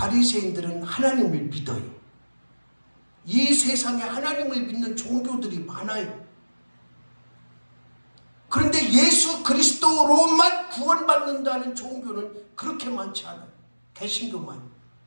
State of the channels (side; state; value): both; inverted; correlation -1.00